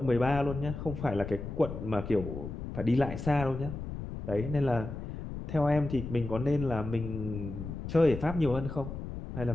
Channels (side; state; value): left; noise; rumble, 8 dB below the sound